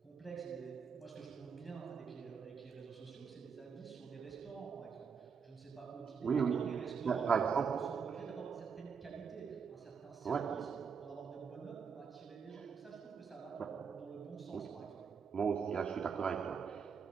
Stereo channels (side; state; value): left; quieter; 6.2 dB